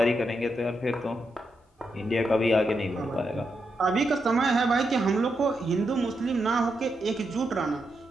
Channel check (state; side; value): normal; both; correlation 0.84